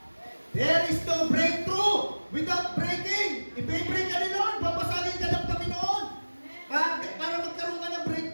There is no breakthrough without breaking. I-break ka ni Lord. Papasagin ka ng Panginoon. Para magkaroon ka ng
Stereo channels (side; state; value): both; inverted; correlation -1.00